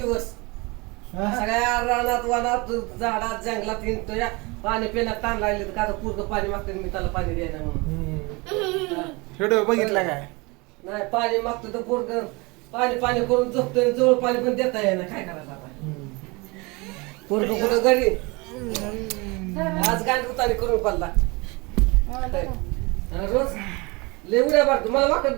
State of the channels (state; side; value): quieter; left; 26.4 dB